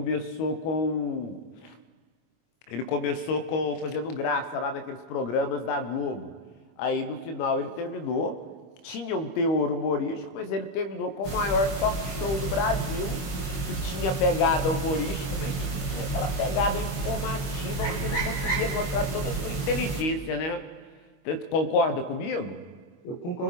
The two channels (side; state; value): right; late; 22 ms